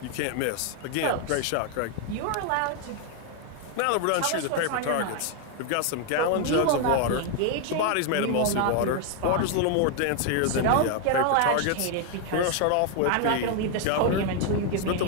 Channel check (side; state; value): both; different; correlation 0.01